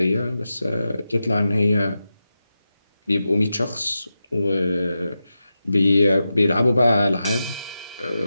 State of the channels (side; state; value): both; inverted; correlation -0.91